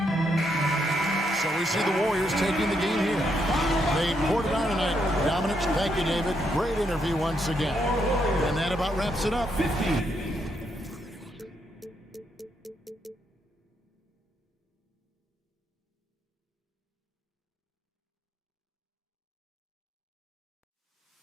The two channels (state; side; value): normal; both; correlation 0.77